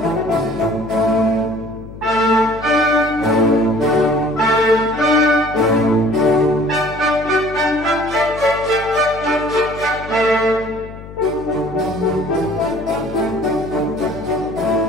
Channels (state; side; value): noise; left; hum, 15 dB below the sound